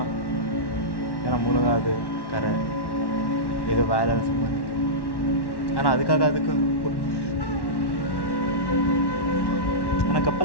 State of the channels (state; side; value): late; right; 1.1 ms